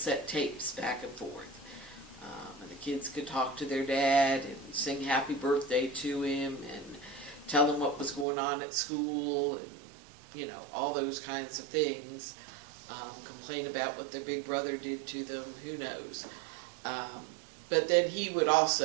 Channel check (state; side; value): drops out; left; at 8.2 s